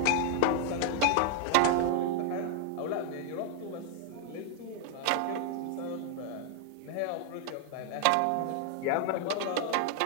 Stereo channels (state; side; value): different; both; correlation 0.00